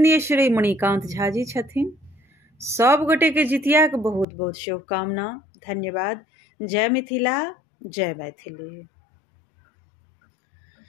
श्री मणिकांत झा जी छथिन। सब गोटे के जितिया के बहुत बहुत शुभकामना, धन्यवाद। जय मिथिला, जय मैथिली।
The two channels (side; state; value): right; drops out; at 4.2 s